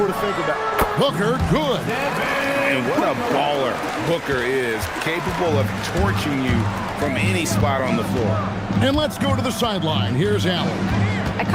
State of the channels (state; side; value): identical; both; correlation 1.00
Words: to think about. Booker, good. And what a baller Booker is, capable of torching you from any spot on the floor. And let's go to the sideline. Here's Allen. I